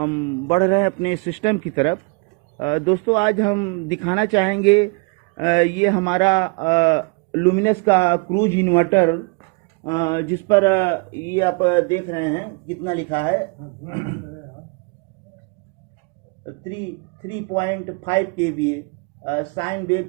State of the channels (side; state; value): left; quieter; 31.9 dB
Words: बढ़ रहे हैं अपने सिस्टम की तरफ। दोस्तों आज हम दिखाना चाहेंगे ये हमारा लुमिनस का क्रूज इन्वर्टर, जिस पर ये आप देख रहे हैं कितना लिखा है 3.5 kVA साइन वेव